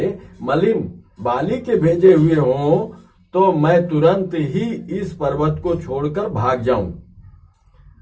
मलिन बाली के भेजे हुए हों तो मैं तुरंत ही इस पर्वत को छोड़कर भाग जाऊं।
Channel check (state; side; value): identical; both; correlation 1.00